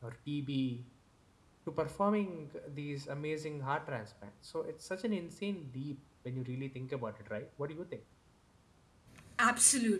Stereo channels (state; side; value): identical; both; correlation 1.00